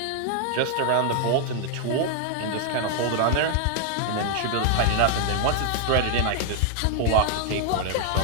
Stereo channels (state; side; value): different; both; correlation 0.00